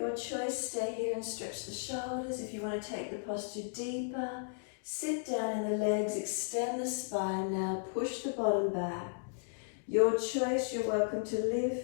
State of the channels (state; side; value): silent; right; digital silence